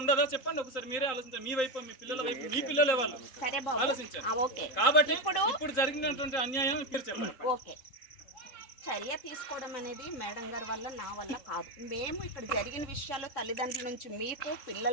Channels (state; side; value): late; right; 3.9 ms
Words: ఉండదా? చెప్పండి ఒకసారి, మీరే ఆలోచించండి. మీ వైపు, మీ పిల్లల వైపు, మీ పిల్లలే వాళ్ళు ఆలోచించారు. కాబట్టి ఇప్పుడు జరిగినటువంటి అన్యాయం మీరు చెప్పండి. చర్య తీసుకోవడం అనేది మేడం గారి వల్ల, నా వల్ల కాదు. మేము ఇక్కడ జరిగిన విషయాలు తల్లిదండ్రుల నుంచి, మీకు